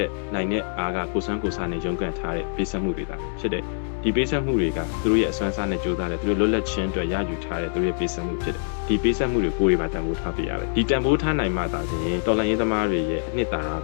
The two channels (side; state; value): right; silent; digital silence